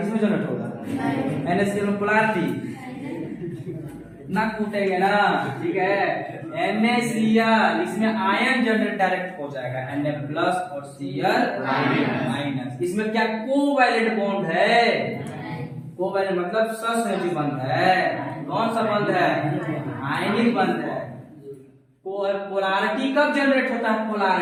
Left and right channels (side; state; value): both; identical; correlation 1.00